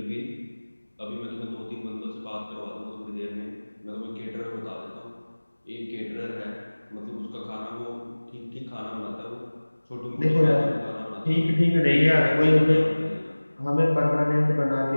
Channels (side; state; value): both; inverted; correlation -1.00